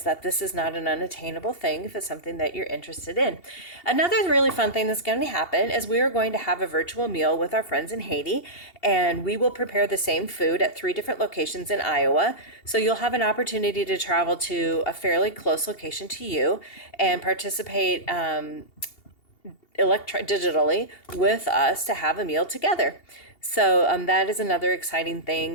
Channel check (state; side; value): late; right; 2.8 ms